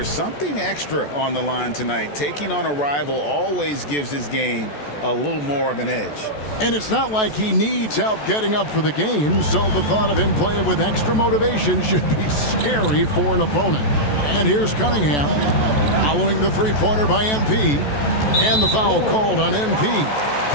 something extra on the line tonight. Taking on a rival always gives his game a little more of an edge. And it's not like he needs help getting up for the game, so the thought of him playing with extra motivation should be scary for an opponent. And here's Cunningham, following the three-pointer by MP, and the foul called on MP.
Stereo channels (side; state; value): right; late; 14 ms